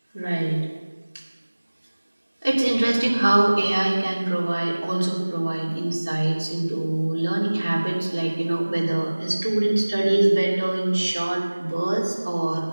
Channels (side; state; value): both; inverted; correlation -1.00